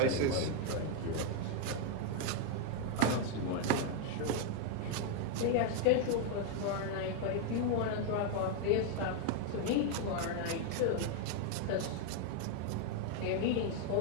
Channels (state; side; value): different; both; correlation 0.00